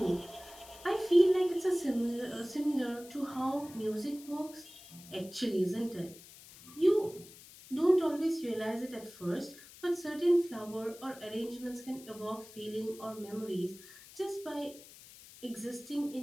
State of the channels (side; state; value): left; noise; hiss, 19 dB below the sound